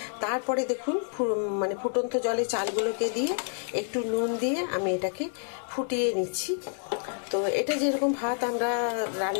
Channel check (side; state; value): right; silent; digital silence